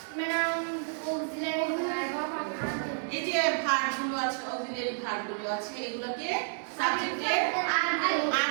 ম্যাডাম অক্সিলারি ভার্ব এই যে ভার্বগুলো আছে, অক্সিলারি ভার্বগুলো আছে, এগুলোকে সাবজেক্টের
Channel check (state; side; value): silent; left; 58 dB below the other